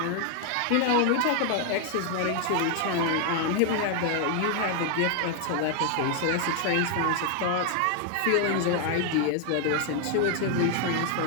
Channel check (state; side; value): different; both; correlation 0.00